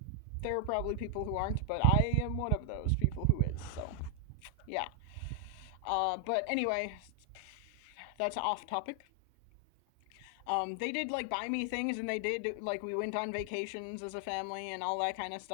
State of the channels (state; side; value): different; both; correlation 0.00